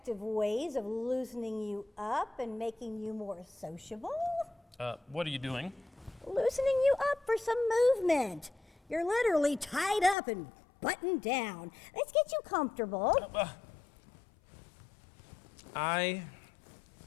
ways of loosening you up and making you more sociable. What are you doing? Loosening you up for some movement. You're literally tied up and buttoned down. Let's get you comfortable. I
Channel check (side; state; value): right; drops out; at 10.2 s